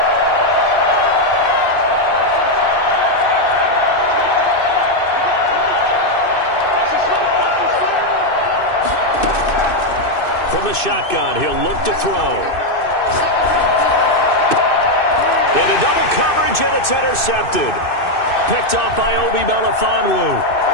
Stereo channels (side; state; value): right; late; 2.6 ms